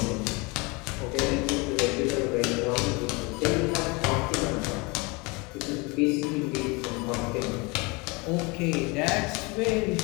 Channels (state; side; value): quieter; right; 27.3 dB